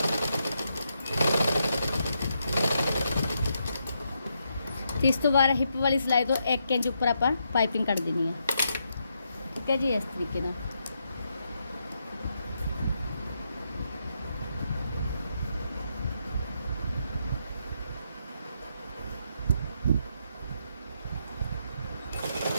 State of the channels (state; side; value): inverted; both; correlation -0.81